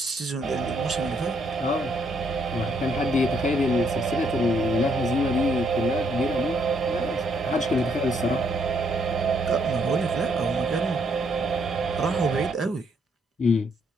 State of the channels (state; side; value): normal; both; correlation 0.71